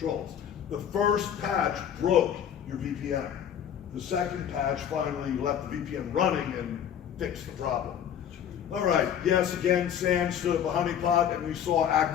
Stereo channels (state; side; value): quieter; right; 9.2 dB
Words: The first patch broke your VPN. The second patch finally left the VPN running and fixed the problem. All right, yes, again, SANS stood at the honeypot and we saw